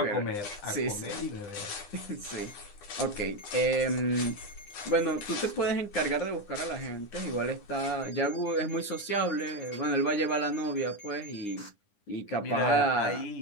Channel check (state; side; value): late; right; 9.8 ms